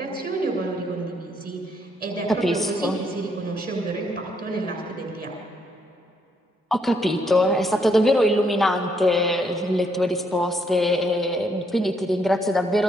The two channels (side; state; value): both; normal; correlation 0.73